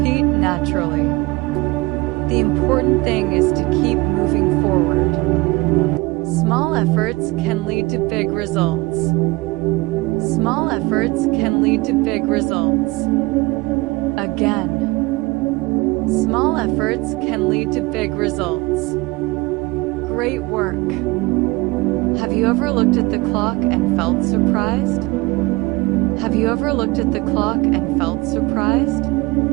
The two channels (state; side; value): quieter; left; 23.0 dB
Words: naturally. The important thing is to keep moving forward. Small efforts can lead to big results. Small efforts can lead to big results. Again. Small efforts can lead to big results. Great work. Have you ever looked at the clock and felt surprised? Have you ever looked at the clock and felt surprised?